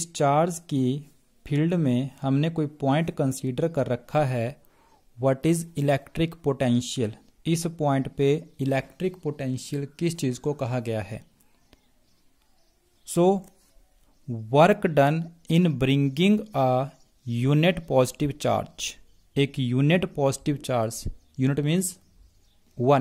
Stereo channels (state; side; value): identical; both; correlation 1.00